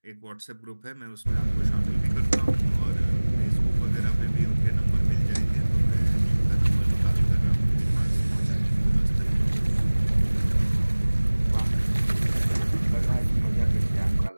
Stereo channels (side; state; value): both; inverted; correlation -1.00